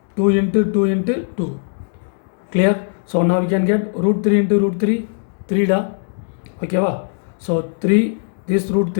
2 into 2 into 2. Clear? So now we can get root 3 into root 3, 3 da. Okay, va? So 3, this root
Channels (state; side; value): silent; right; 66 dB below the other